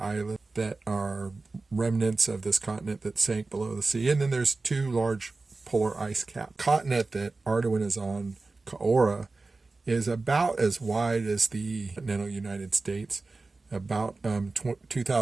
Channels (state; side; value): quieter; left; 3.6 dB